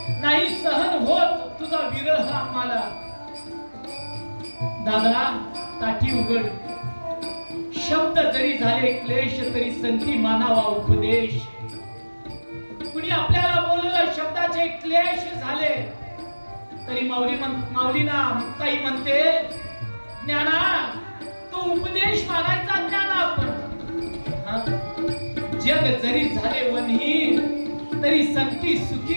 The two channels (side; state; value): both; inverted; correlation -1.00